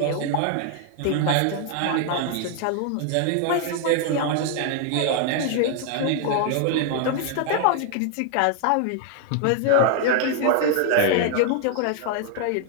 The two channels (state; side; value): different; both; correlation 0.00